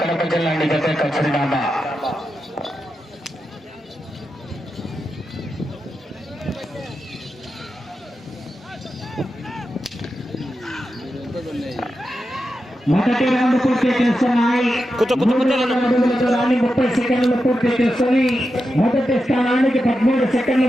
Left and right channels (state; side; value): normal; both; correlation 0.89